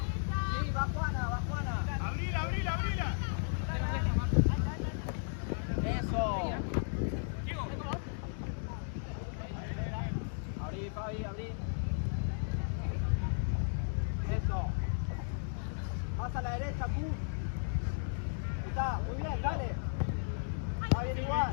Sí, va Juana. Abrila. Eso. Abrí, Fabi, abrí. Eso. Más a la derecha, Q. Está, muy bien, dale. Va bien igual.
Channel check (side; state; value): right; silent; digital silence